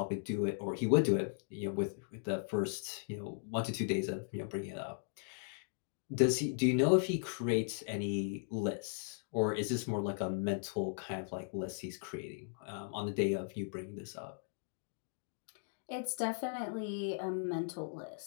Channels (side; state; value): right; silent; digital silence